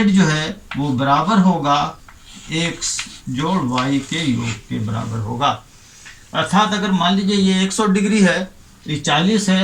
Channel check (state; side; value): identical; both; correlation 1.00